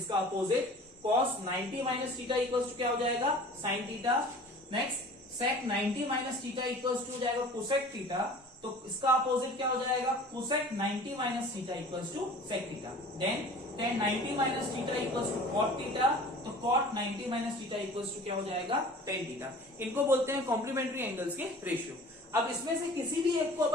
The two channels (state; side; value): normal; both; correlation 0.44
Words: opposite cos 90 minus theta equals to क्या हो जाएगा sin theta. Next sec 90 minus theta equals to हो जाएगा cosec थीटा, तो इसका अपोजिट क्या हो जाएगा cosec 90 minus theta equals to sec theta. Then tan 90 minus theta equals to cot theta, तो cot 90 minus theta equals to क्या हो जाएगा tan थीटा। इनको बोलते हैं कॉम्प्लीमेंट्री एंगल्स के रेशियो। अब इसमें से किसी भी एक को